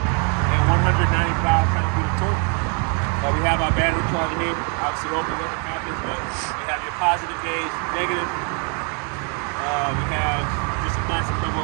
195 pound-feet of torque. We have our battery charger here. Obviously, open what happens, but we have your positive gauge, negative. We have just a plastic cover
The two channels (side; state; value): left; quieter; 38.6 dB